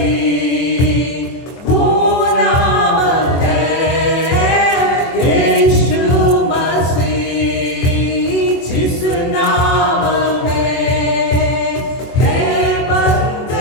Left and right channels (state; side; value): late; right; 24 ms